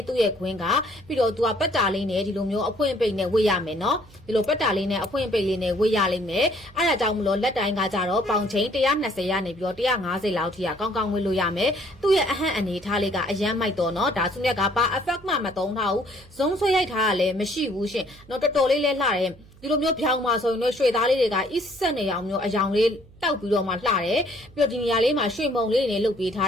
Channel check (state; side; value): noise; right; hum, 24 dB below the sound